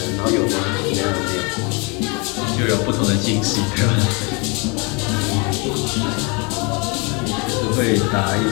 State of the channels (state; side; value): quieter; right; 30.7 dB